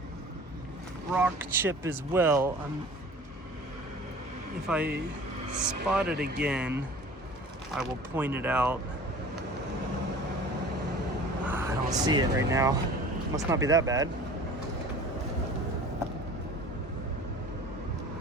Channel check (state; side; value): normal; both; correlation 0.43